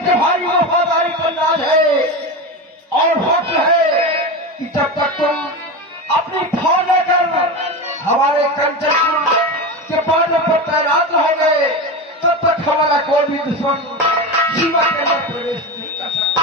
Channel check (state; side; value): normal; both; correlation 0.22